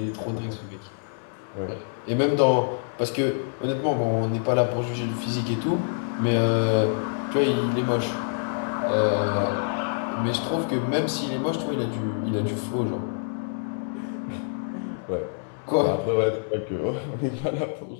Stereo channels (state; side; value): silent; right; digital silence